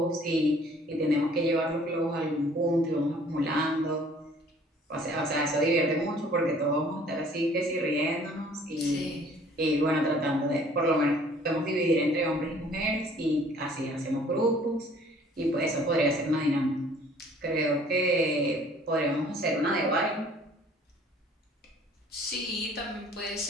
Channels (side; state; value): both; normal; correlation 0.55